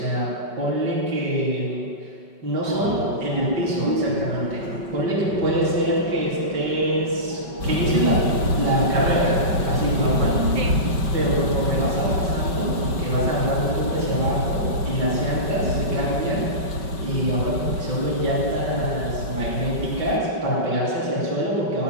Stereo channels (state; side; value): late; left; 5.3 ms